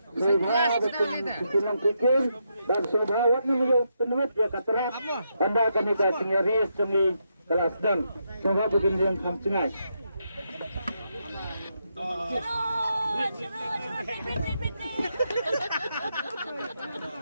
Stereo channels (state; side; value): inverted; both; correlation -0.81